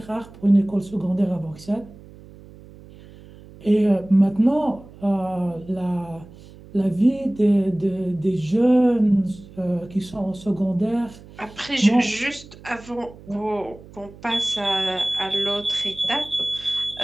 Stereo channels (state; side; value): noise; right; hum, 20 dB below the sound